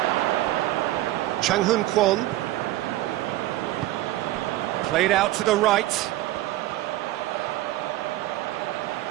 Chang-Hun Kwon. Played out to the right.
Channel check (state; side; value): quieter; left; 16.0 dB